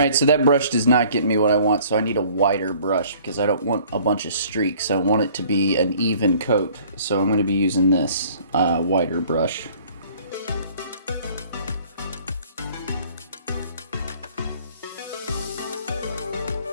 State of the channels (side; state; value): both; inverted; correlation -0.54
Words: so that brush does not get me what I want, so I need a wider brush because I don't want a bunch of streaks. I want it to be an even coat, so I'm going to be using this wider brush.